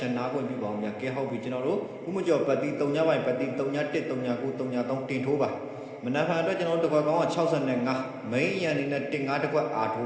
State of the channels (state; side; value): identical; both; correlation 1.00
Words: င်းနာခွင့်ပြုပါအောင်ဗျကဲဟုတ်ပြီကျွန်တော်တို့ခုမကျော်ပတ်သီး3ညပိုင်းပတ်သီး3ည1 3ည9 3ည3တင်ထိုးပါမနက်ဖြန်အတွက်ကျွန်တော်တို့တကွက်ကောင်းက65မိန်ရန်နေနဲ့15တကွက်အားထို